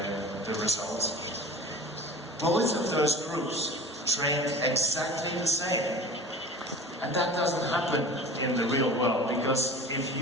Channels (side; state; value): both; normal; correlation 0.38